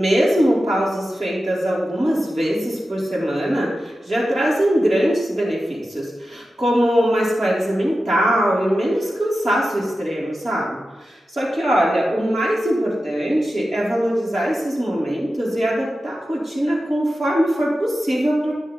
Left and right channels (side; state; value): both; normal; correlation 0.93